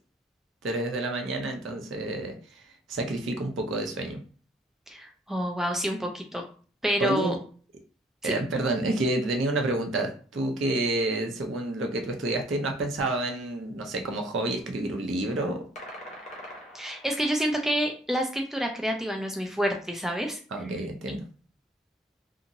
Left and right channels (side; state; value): both; normal; correlation 0.59